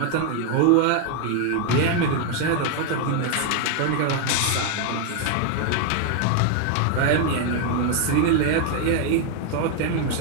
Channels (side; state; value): both; different; correlation 0.01